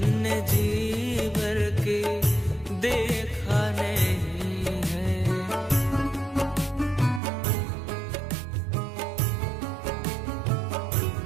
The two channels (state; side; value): drops out; left; at 7.2 s